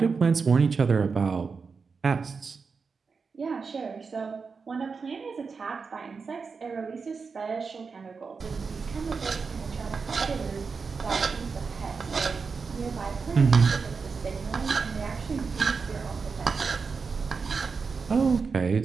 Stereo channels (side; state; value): left; quieter; 5.0 dB